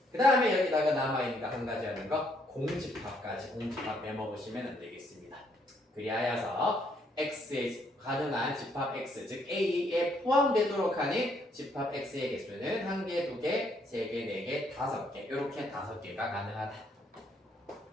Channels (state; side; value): normal; both; correlation 0.70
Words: 그 다음에 여기다가 남아있는 거 한 가지 하는 거 공집합까지 공집합 메모보시면 안 되겠습니다. 그리하여서 X의 가능한 집합 X, 즉 A에 포함되도록 하는 집합 X의 개수는 1개, 2개, 3개, 4개, 5개 이렇게 5개가 가능하다.